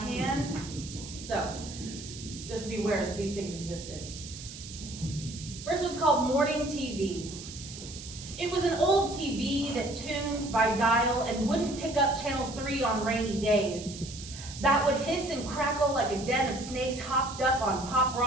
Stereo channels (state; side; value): noise; right; hiss, 13 dB below the sound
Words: So just be aware that these things existed. First one's called Morning TV. It was an old TV that tuned by dial and wouldn't pick up channel 3 on rainy days. That would hiss and crackle like a den of snakes hopped up on Pop